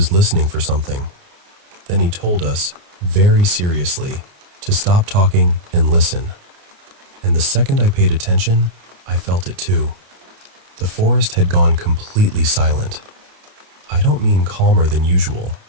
listening for something. Then he told us, very seriously, to stop talking and listen. And the second I paid attention, I felt it too. The forest had gone completely silent. I don't mean calmer than usual.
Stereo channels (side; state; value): left; late; 29 ms